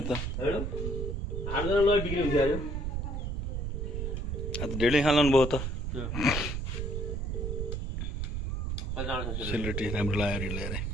त। ढेडै खानु भयो त। सेलरोटी राम्रो लाग्यो ल्याएर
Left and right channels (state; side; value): noise; right; rumble, 2 dB below the sound